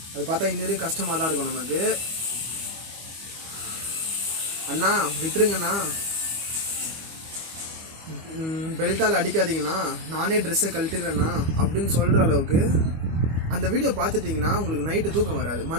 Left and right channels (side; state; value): left; late; 25 ms